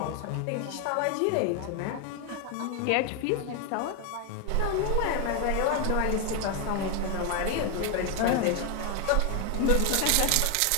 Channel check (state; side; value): different; both; correlation 0.01